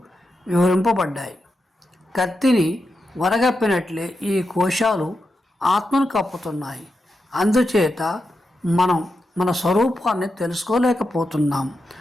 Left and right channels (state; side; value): normal; both; correlation 0.88